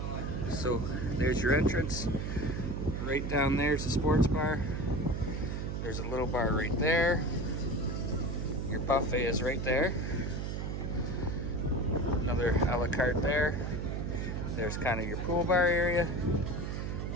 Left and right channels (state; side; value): noise; right; hum, 3 dB below the sound